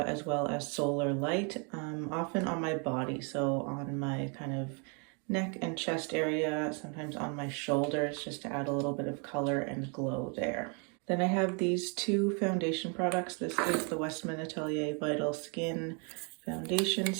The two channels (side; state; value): left; quieter; 36.1 dB